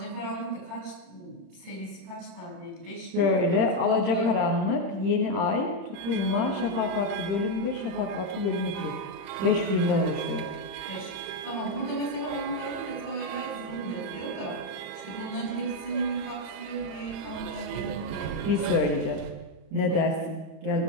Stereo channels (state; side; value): late; left; 31 ms